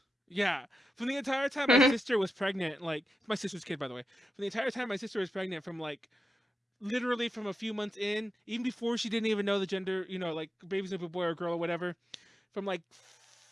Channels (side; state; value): both; normal; correlation 0.89